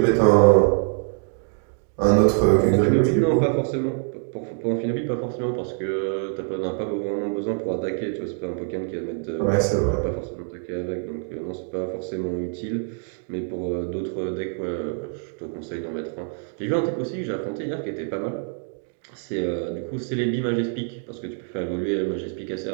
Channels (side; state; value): left; silent; 56 dB below the other